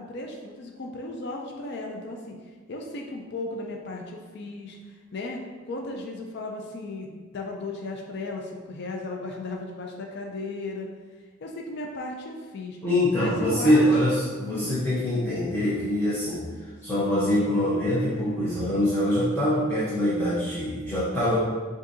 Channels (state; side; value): normal; both; correlation 0.54